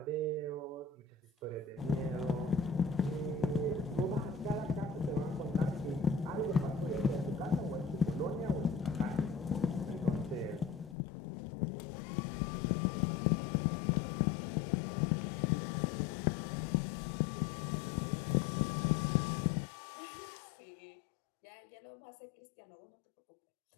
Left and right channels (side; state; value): right; drops out; at 11.0 s